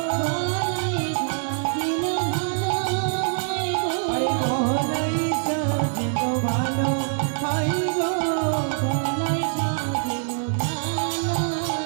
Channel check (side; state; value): left; silent; digital silence